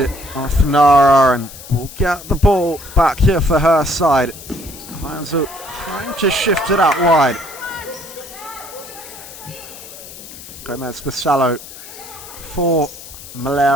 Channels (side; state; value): left; noise; hiss, 15 dB below the sound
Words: it off Nara and will get the ball back here for her side. Heinzel trying to shift it out wide. Gomez Bisallo for